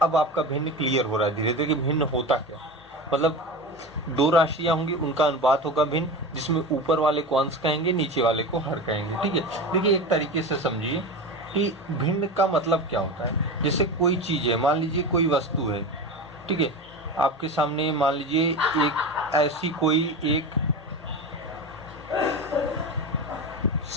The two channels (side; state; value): both; normal; correlation 0.26